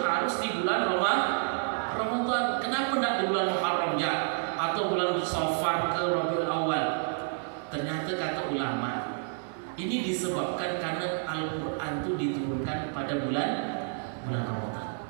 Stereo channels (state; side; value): silent; left; 57 dB below the other